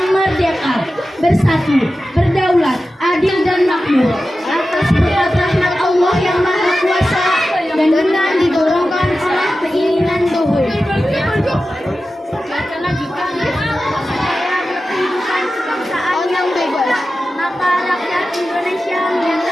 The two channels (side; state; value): both; normal; correlation 0.93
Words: merdeka, bersatu, berdaulat, adil dan makmur atas berkat rahmat Allah yang Maha Kuasa dan dengan didorongkan oleh keinginan luhur. Yang bebas, maka rakyat Indonesia